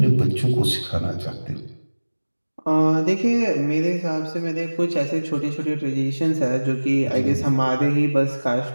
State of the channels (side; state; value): both; inverted; correlation -1.00